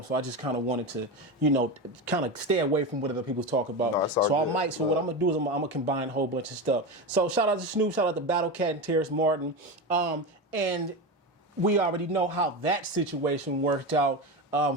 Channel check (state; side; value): normal; both; correlation 0.20